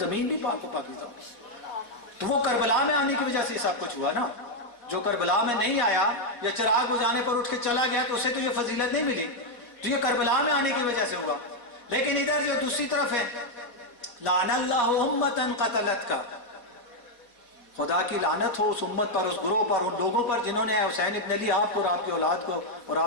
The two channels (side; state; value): right; late; 4.1 ms